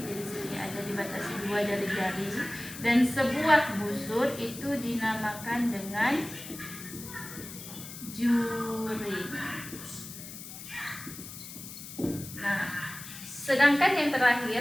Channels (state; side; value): noise; left; hiss, 12 dB below the sound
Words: Jadi sini ada dibatasi 2 jari-jari. Dan sebuah busur itu dinamakan dengan juring. Nah, sedangkan yang